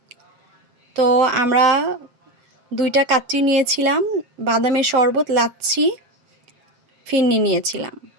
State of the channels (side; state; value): left; late; 7.4 ms